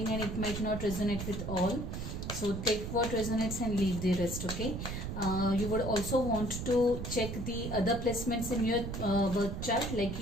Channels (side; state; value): right; noise; rumble, 5 dB below the sound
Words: and it might not resonate with all. So take what resonates and leave the rest, okay? You would also want to check the other placements in your birth chart, like